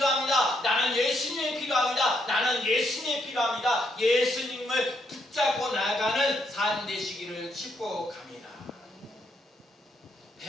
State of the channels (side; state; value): both; normal; correlation 0.75